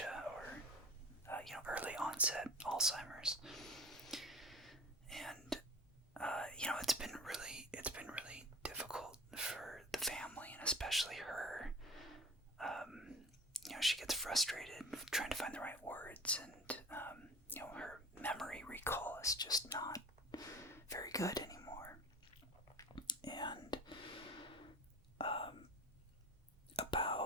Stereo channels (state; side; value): normal; both; correlation 0.39